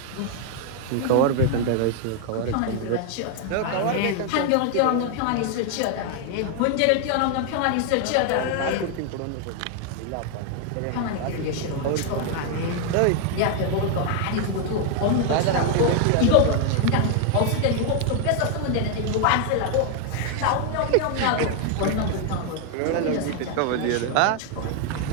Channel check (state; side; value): different; both; correlation 0.00